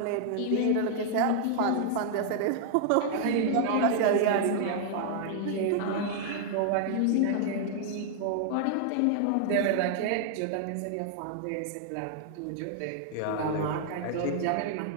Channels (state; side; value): different; both; correlation -0.01